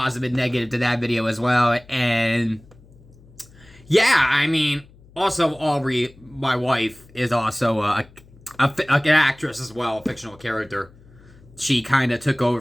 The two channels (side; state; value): left; noise; hum, 25 dB below the sound